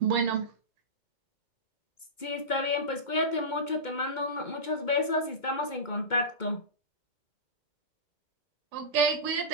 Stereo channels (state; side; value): late; right; 2.2 ms